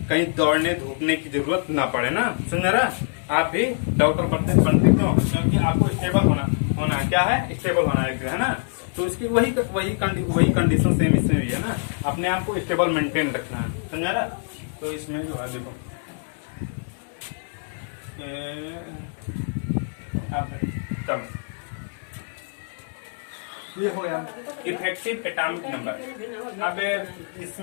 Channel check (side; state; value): right; silent; 62 dB below the other